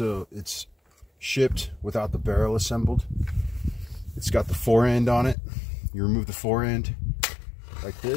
it's shipped without the barrel assembled. It's got the fore end on it. You remove the fore end like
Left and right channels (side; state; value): right; drops out; at 5.4 s